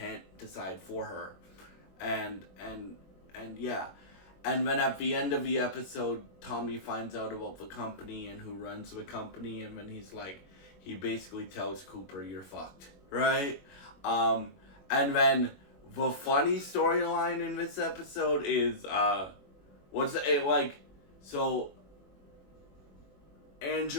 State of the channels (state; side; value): late; right; 21 ms